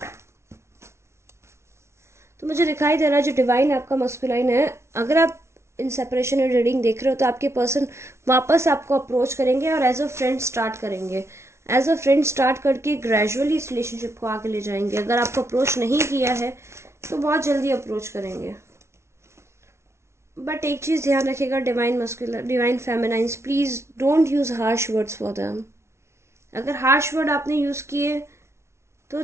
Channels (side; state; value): left; late; 0.13 ms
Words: तो मुझे दिखाई दे रहा है जो डिवाइन आपका मस्कुलाइन है, अगर आप इन सेपरेशन और रीडिंग देख रहे हो तो आपके पर्सन वापस आपको अप्रोच करेंगे और एज अ फ्रेंड स्टार्ट करेंगे। एज अ फ्रेंड स्टार्ट करके ग्रेजुअली इस रिलेशनशिप को आगे ले जाएंगे। अगर आपको अप्रोच नहीं किया है तो बहुत जल्दी अप्रोच करेंगे। बट एक चीज़ ध्यान रखिएगा, divine masculine divine feminines, please don't use harsh words for them. अगर हार्श वर्ड आपने यूज़ किए तो